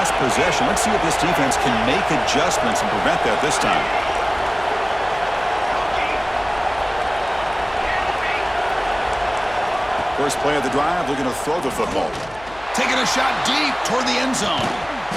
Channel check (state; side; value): noise; left; hum, 21 dB below the sound